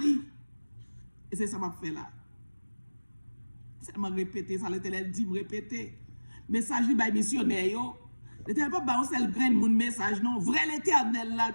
Et c'est ça que je fais là. C'est me répéter ça, l'Éternel dit, me répéter. Message li by missionnaire yo. L'Éternel pas ba on seul grain moun message non, vrai l'Éternel là,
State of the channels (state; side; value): inverted; both; correlation -1.00